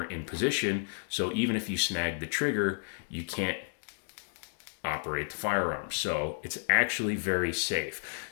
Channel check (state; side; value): silent; right; digital silence